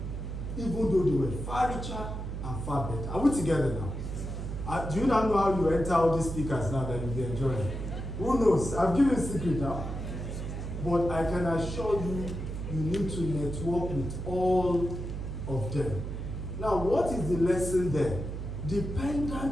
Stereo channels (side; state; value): right; noise; hum, 5 dB below the sound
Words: even though they were far richer and far better. Are we together now? Do you now know how you enter all these speakers now that you'll be enjoying? Who knows? I've given a secret now. But I can assure you, you need to network with all of them. Now, what is the lesson there?